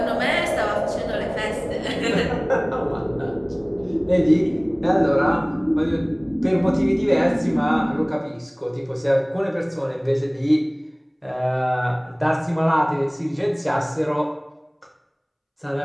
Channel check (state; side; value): identical; both; correlation 1.00